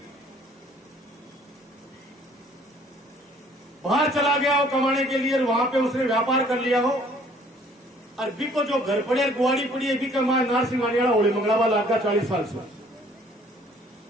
बाहर चला गया हो कमाने के लिए, और वहां पे उसने व्यापार कर लिया हो, और बी को जो घर पड़े गुआड़ी पड़ी है, बी का मां नारसिंहानी वाला होली मंगलावा लाग का 40 साल से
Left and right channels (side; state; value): both; normal; correlation 0.58